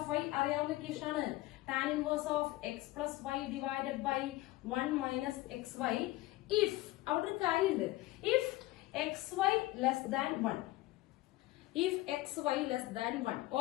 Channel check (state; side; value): quieter; right; 18.2 dB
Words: y അറിയാവുന്ന ഇക്വേഷൻ ആണ്. Tan inverse of x plus y divided by 1 minus x y if, അവിടെ ഒരു കാര്യമുണ്ട്, if x y less than 1. if xy less than 1,